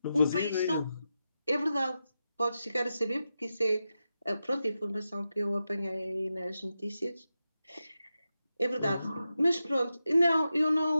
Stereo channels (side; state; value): both; inverted; correlation -0.90